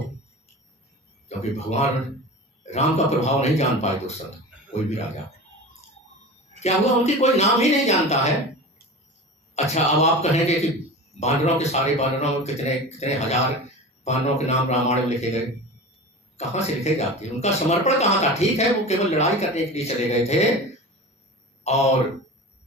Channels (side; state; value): both; normal; correlation 0.32